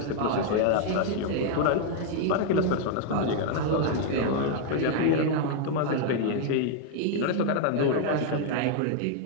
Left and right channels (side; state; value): both; different; correlation 0.00